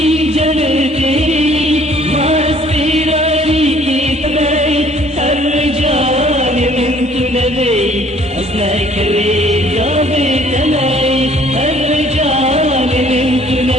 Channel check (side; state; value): both; normal; correlation 0.58